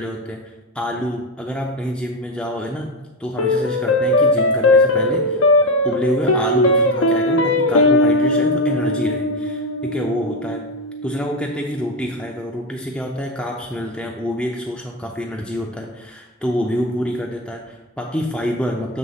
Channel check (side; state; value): both; normal; correlation 0.14